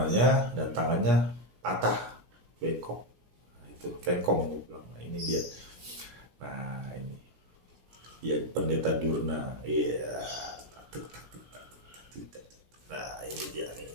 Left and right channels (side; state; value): left; late; 17 ms